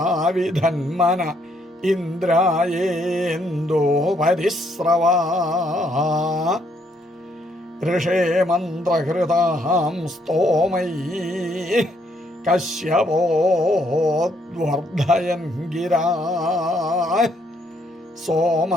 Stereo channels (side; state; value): both; normal; correlation 0.71